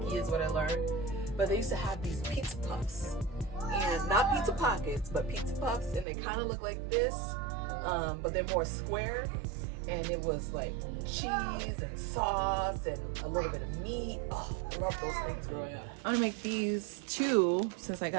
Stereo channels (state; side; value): drops out; left; at 6.1 s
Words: is what I learned. But they used to have these pizza puffs, and not pizza pockets, but pizza puffs, and they kind of look like this, but they're more square. And it was like cheese and sauce and a little bit of meat. Oh, I love those things growing up. I'm gonna make these two since I